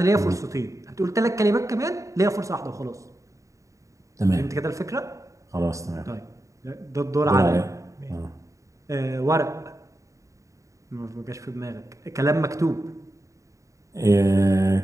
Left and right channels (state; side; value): late; left; 0.16 ms